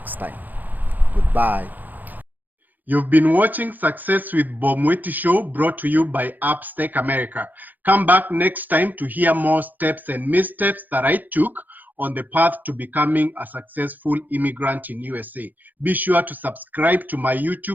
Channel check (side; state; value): left; late; 0.084 ms